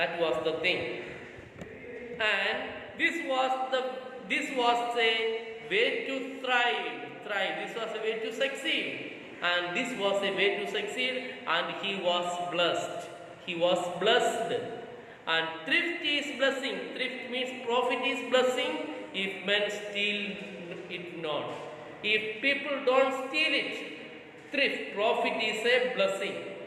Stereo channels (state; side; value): identical; both; correlation 1.00